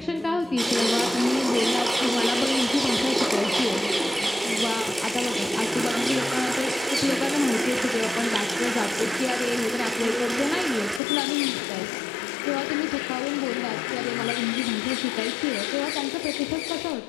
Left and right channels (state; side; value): drops out; right; at 11.0 s